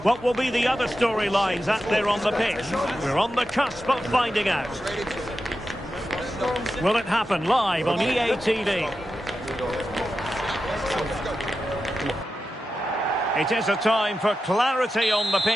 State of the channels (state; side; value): normal; both; correlation 0.91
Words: What will be the other storylines out there on the pitch? We're on the cusp of finding out. Will it happen live on EA TV? It is a time for clarity on the